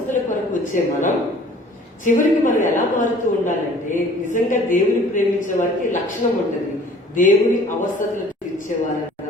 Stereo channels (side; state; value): both; normal; correlation 0.51